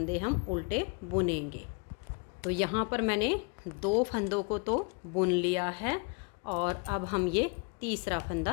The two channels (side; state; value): right; quieter; 32.9 dB